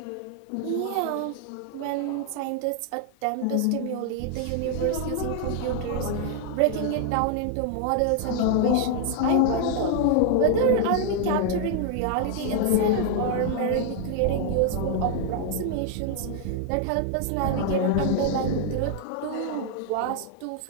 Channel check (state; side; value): different; both; correlation 0.00